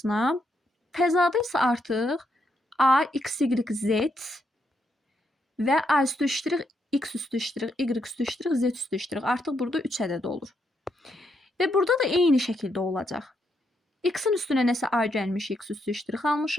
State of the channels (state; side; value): normal; both; correlation 0.78